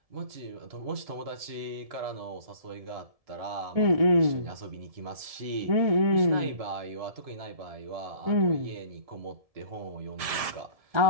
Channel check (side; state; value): left; late; 1.7 ms